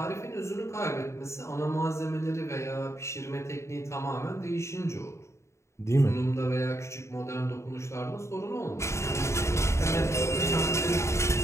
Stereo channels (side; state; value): right; late; 0.14 ms